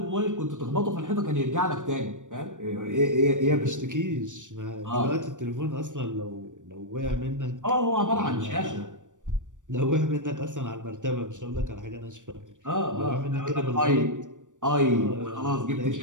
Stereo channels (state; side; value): late; left; 0.87 ms